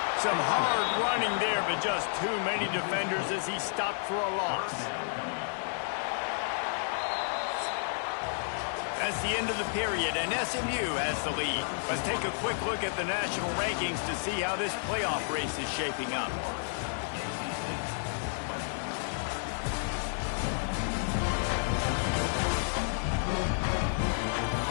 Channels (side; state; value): right; silent; digital silence